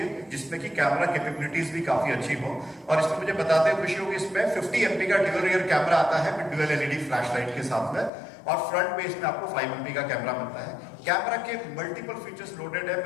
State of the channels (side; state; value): right; drops out; at 8.1 s